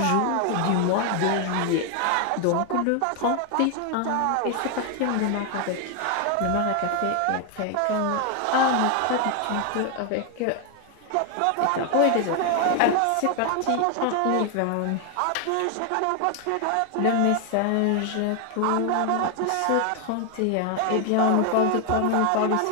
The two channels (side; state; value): both; different; correlation 0.00